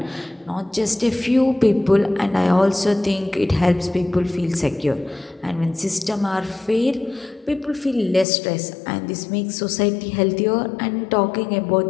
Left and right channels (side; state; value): right; drops out; at 8.2 s